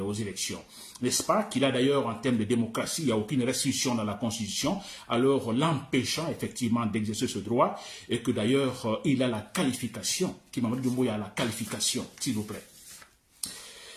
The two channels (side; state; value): both; identical; correlation 1.00